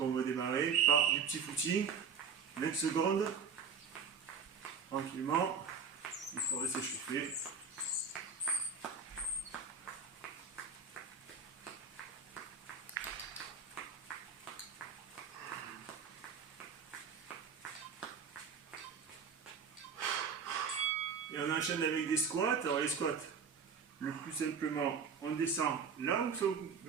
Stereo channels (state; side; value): quieter; left; 5.9 dB